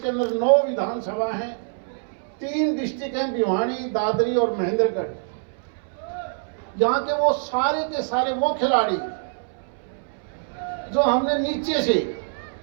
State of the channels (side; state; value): left; silent; 62 dB below the other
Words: अंदर 9 विधानसभा हैं, 3 डिस्ट्रिक्ट हैं, भिवानी, दादरी और महेंद्रगढ़, यहाँ के वो सारे के सारे वो खिलाड़ी जो हमने नीचे से